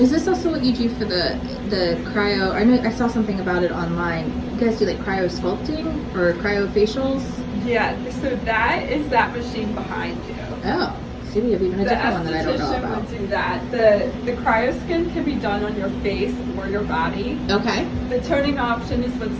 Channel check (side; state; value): both; identical; correlation 1.00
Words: this also what you do for the cryo? I know I saw something about it online. You guys do like cryo sculpting or cryo facials? Yeah, so that is that machine behind you. Oh, see, we have even a different one that I don't know about. Would do that. The cryoskin can be done on your face or your body. Okay. The toning option is what's